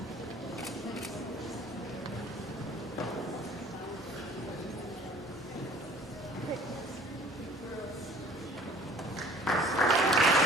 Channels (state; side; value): normal; both; correlation 0.51